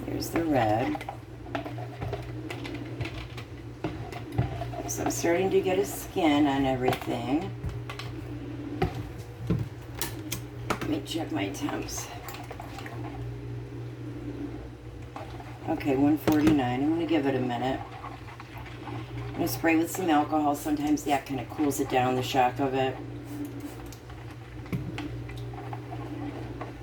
There's the red. So I'm starting to get a skin on everything. Let me check my temps. Okay, 149. I'm going to give it a minute. I'm going to spray with some alcohol. Sometimes that kind of cools it down, the shock of it.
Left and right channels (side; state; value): both; identical; correlation 1.00